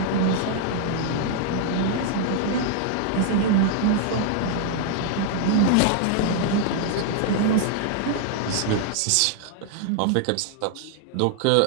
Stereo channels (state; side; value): different; both; correlation 0.00